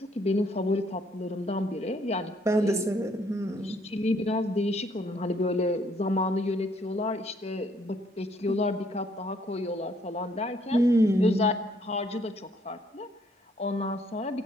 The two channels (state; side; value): normal; both; correlation 0.66